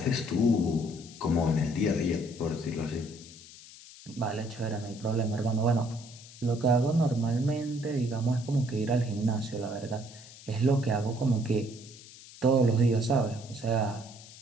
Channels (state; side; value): noise; left; hiss, 18 dB below the sound